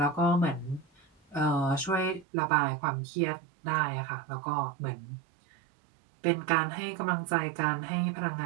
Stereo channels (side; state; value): left; drops out; at 2.2 s